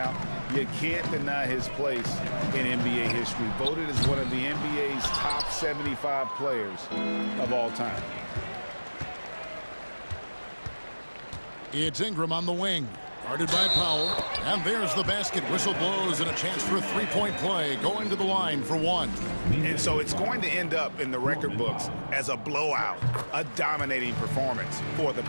you can't deny his place in NBA history. Voted as one of the NBA's top 75 players of all time. It's Ingram on the wing. Guarded by Powell. And there's the basket. Whistle blows and a chance for a three-point play. Going to the line for 1. And so it's going to end up in the record books as a blowout, a dominating performance for the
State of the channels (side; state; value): both; inverted; correlation -1.00